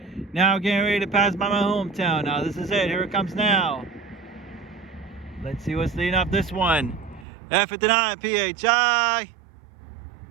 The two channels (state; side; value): drops out; left; at 7.2 s